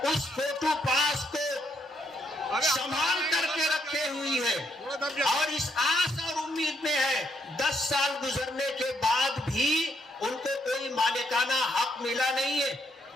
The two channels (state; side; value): normal; both; correlation 0.75